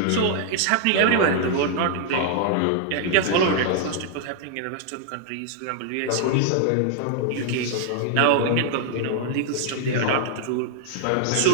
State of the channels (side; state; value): both; different; correlation -0.01